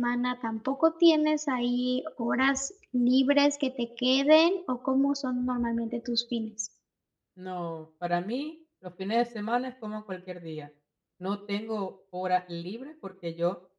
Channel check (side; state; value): both; identical; correlation 1.00